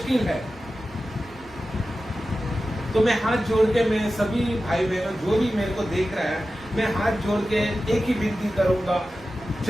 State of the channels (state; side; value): normal; both; correlation 0.94